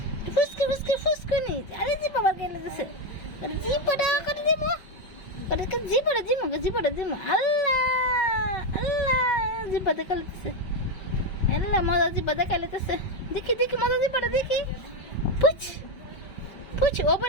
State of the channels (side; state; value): right; late; 5.4 ms